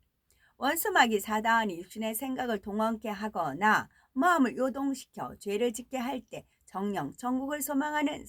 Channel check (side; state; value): both; identical; correlation 1.00